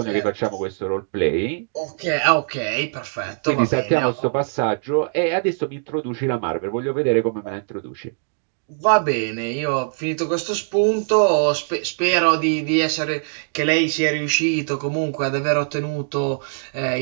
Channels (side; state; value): left; silent; digital silence